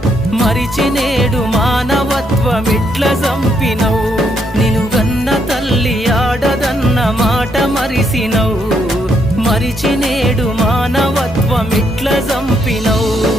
మరిచి నేడు మానవత్వమిట్ల చంపినవు నిను గన్న తల్లి ఆడదన్న మాట మరిసినవు మరిచి నేడు మానవత్వమిట్ల చంపినవు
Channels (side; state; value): both; normal; correlation 0.75